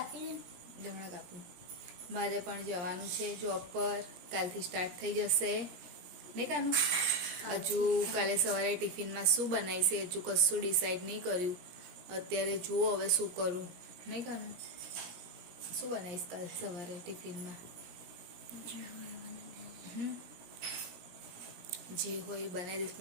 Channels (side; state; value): left; late; 17 ms